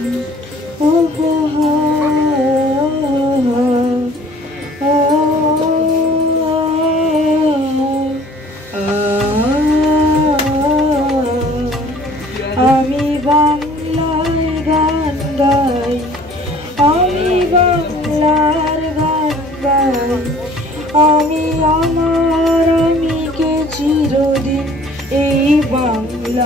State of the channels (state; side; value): normal; both; correlation 0.52